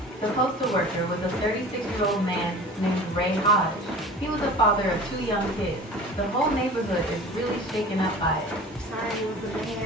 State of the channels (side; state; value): both; normal; correlation 0.40